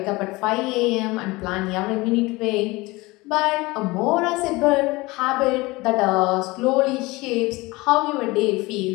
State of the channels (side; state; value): right; quieter; 22.3 dB